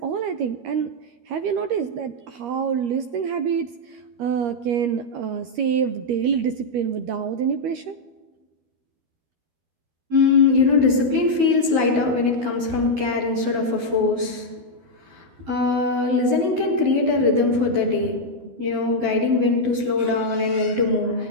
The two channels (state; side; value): late; left; 12 ms